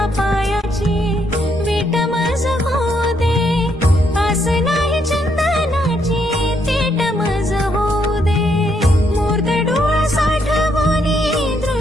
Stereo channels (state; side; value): normal; both; correlation 0.74